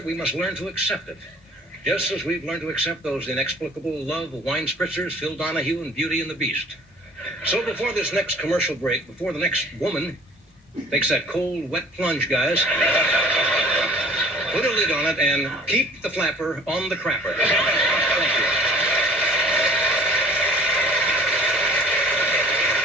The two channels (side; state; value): both; normal; correlation 0.49